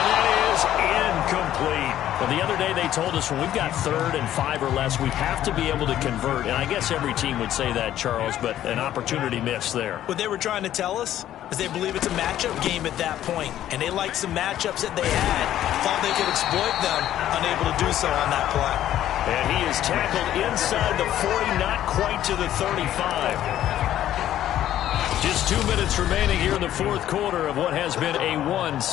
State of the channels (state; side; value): quieter; right; 12.2 dB